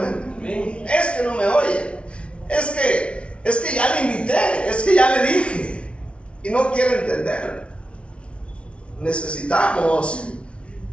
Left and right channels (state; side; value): late; right; 0.060 ms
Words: Es que no me oye. Es que ya le invité. Es que ya le dije. Y no quiere entender. Necesitamos